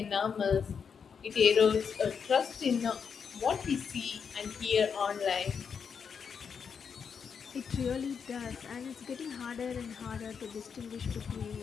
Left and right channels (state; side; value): quieter; right; 6.5 dB